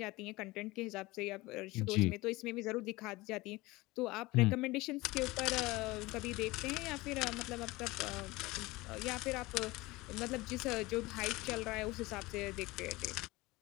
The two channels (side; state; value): right; quieter; 21.1 dB